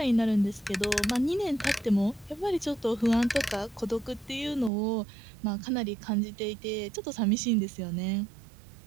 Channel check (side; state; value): left; drops out; at 4.7 s